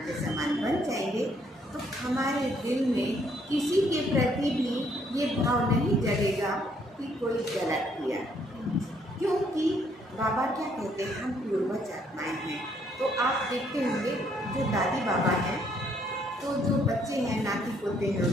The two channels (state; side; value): normal; both; correlation 0.68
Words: के समान बन जाएंगे, तो हमारे दिल में किसी के प्रति भी ये भाव नहीं जगेगा कि कोई गलत किया, क्योंकि बाबा क्या कहते हैं, हम पूर्वज आत्माएं हैं। तो आप देखते होंगे जो दादी बाबा हैं, तो जो बच्चे हैं नाती पोते हैं